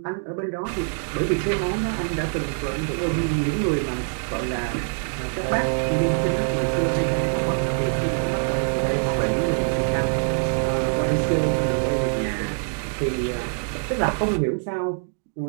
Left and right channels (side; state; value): left; silent; 62 dB below the other